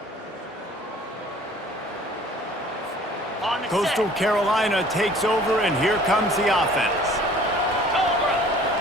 On the Coastal set. Carolina takes over, and here comes the offense. Cobra.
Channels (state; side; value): normal; both; correlation 0.51